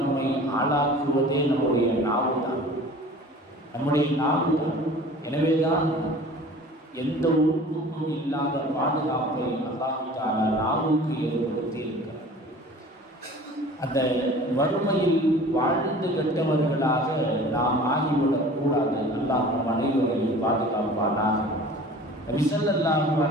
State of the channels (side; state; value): both; normal; correlation 0.44